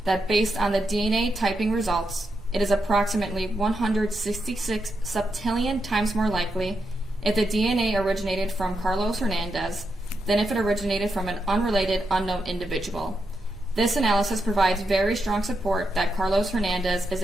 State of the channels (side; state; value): both; normal; correlation 0.84